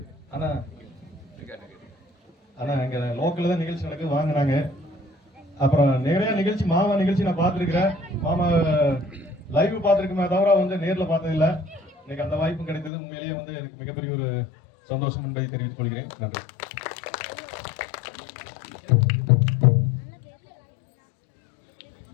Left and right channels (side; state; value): right; drops out; at 12.9 s